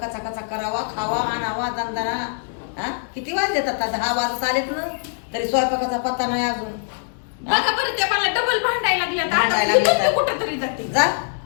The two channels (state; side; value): silent; right; 64 dB below the other